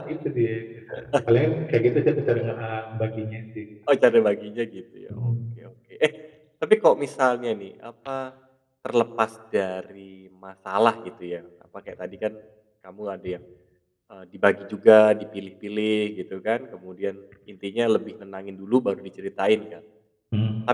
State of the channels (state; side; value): identical; both; correlation 1.00